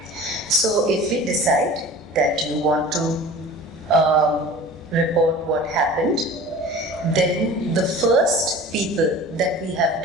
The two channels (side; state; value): both; normal; correlation 0.40